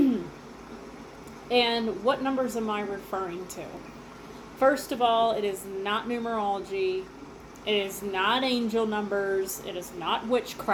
And what numbers am I referring to? First of all, it is not numerology. It is not angel numbers. It is not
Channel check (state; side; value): identical; both; correlation 1.00